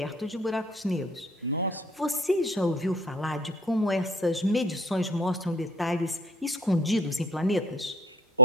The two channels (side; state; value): both; normal; correlation 0.49